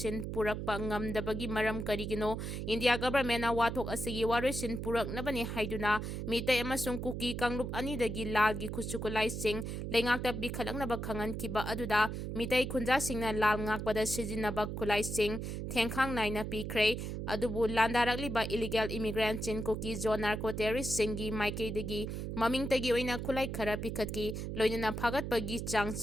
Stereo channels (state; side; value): noise; right; hum, 5 dB below the sound